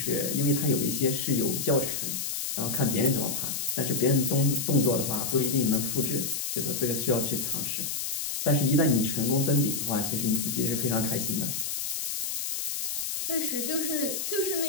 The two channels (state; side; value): noise; left; hiss, 2 dB below the sound